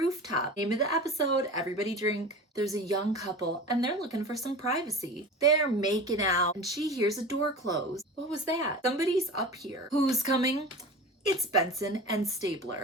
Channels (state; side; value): normal; both; correlation 0.33